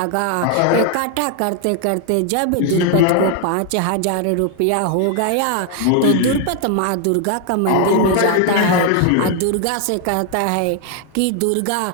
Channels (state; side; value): different; both; correlation 0.00